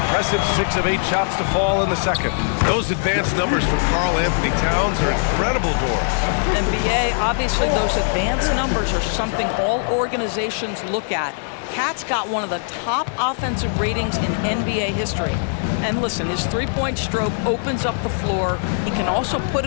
6 of 8 shots to fall in the second. Those advanced numbers for Karl Anthony Towns are incredible, Doris. NBA, obviously those advanced numbers are something all organizations look at. Cat's got one of the top offensive ratings in NBA history. And listen, his three-point stroke opens up the floor. He can also put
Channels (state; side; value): silent; right; digital silence